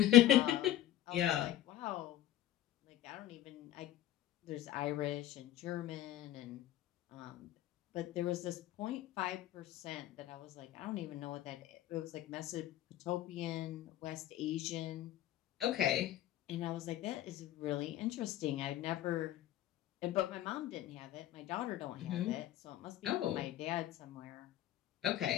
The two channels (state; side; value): quieter; right; 13.2 dB